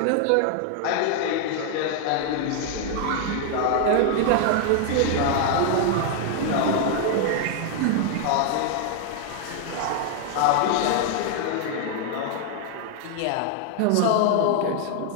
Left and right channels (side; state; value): both; different; correlation 0.00